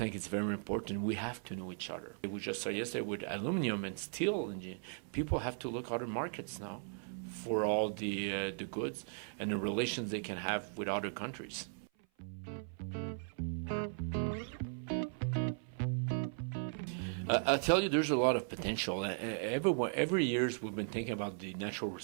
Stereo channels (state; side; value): silent; left; 53 dB below the other